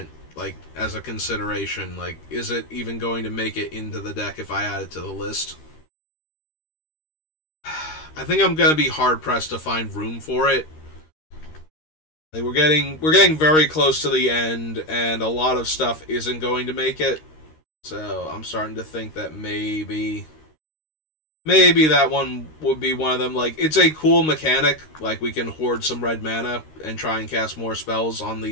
like, as a consideration? Like, is it even going to make it into the deck if I add it to the list? I think I'm going to be hard-pressed to find room for it. Like, we're getting very close to the end, and a lot of stuff isn't going to make it. So, I'm starting to think that maybe that one would be one of them. Like, it's a cool mechanic. Like, we can hoard some red mana and try and cast more spells on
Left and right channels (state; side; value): late; right; 13 ms